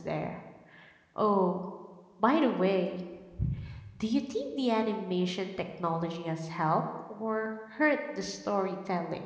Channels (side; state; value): both; identical; correlation 1.00